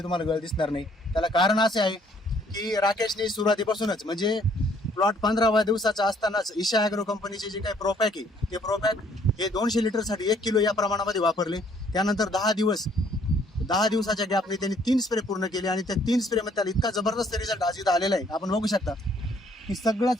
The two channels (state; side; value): normal; both; correlation 0.63